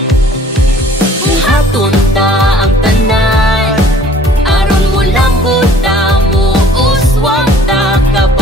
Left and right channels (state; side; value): normal; both; correlation 0.54